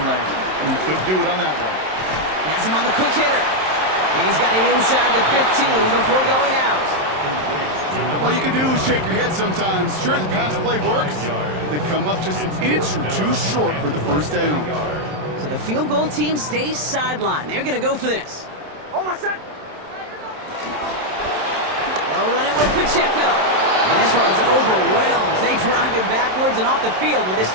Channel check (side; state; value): left; late; 27 ms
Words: lane. And he couldn't do it on that one. Has him on the quick hitter. And he's got it inside the 15 before going out. All you can do is shake your head sometimes. Sure, the pass play works. They come up just an inch or 2 short for the first down. So the field goal team stays sidelined. They're going to go for this. Almost set. They'll run it with Pacheco. And this one's overwhelmed. They drive him backwards and off the field with this